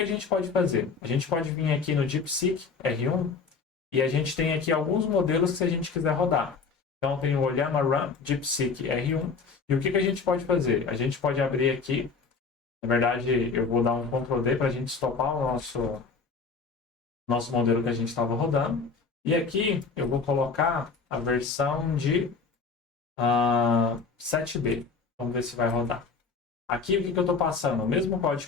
a gente pode fazer? A gente pode vir aqui no DeepSeek R1 e a gente tem aqui alguns modelos que se a gente quiser rodar. Então tem o Llama Run DeepSeek R1. E o que a gente pode fazer? A gente pode abrir aqui. Na verdade, eu vou dar um Ctrl D para a gente stopar o nosso modelo que a gente estava rodando. E aqui eu vou colocar a versão de 7B. Vamos ver se vai rodar. Aqui o que eu estou passando? O mesmo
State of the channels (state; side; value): quieter; right; 4.9 dB